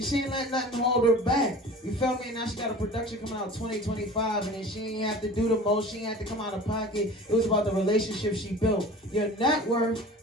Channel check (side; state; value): both; normal; correlation 0.40